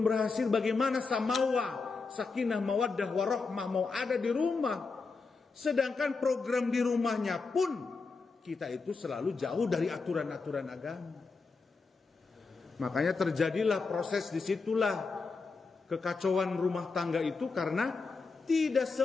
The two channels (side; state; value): right; quieter; 4.4 dB